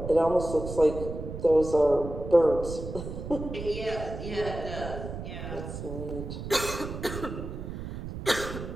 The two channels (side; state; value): right; noise; rumble, 8 dB below the sound